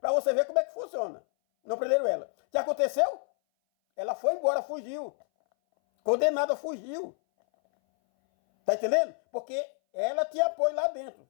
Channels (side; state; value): right; silent; 59 dB below the other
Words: você ver como é que funciona. Não prenderam ela. O que aconteceu? Ela foi embora, fugiu. Condenada, fugiu. Tá entendendo? Porque ela tinha apoio lá dentro.